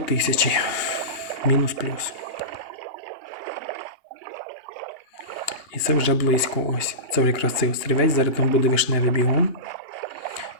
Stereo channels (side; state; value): right; late; 2.8 ms